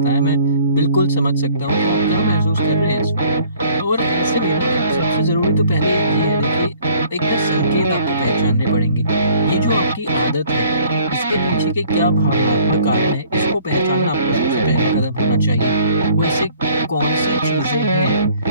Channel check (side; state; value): both; inverted; correlation -0.57